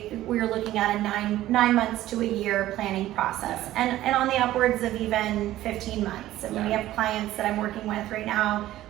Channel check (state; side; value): quieter; left; 14.6 dB